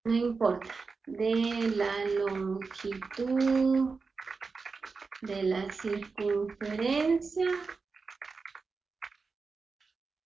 no importa, de la longitud de la circunferencia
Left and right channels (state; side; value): quieter; left; 4.5 dB